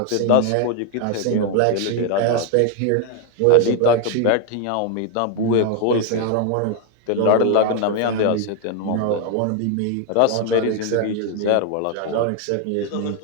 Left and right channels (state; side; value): different; both; correlation 0.01